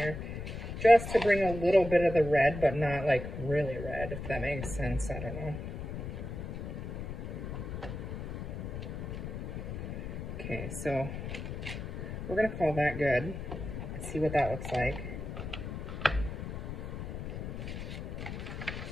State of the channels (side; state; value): left; noise; rumble, 6 dB below the sound